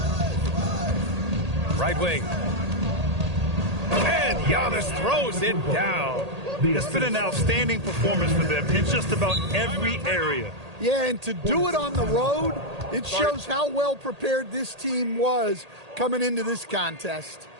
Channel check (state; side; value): late; left; 1.8 ms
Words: Right wing. And Giannis throws it down. It's been an outstanding performance for them in just about every area. Yeah, and to do it on the road, it shows how well prepared this team was coming into this contest.